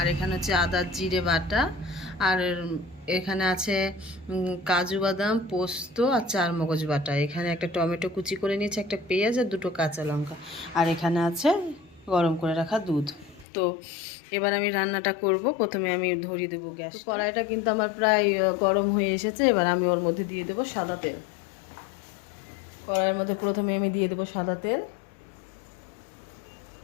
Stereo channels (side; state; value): right; drops out; at 13.5 s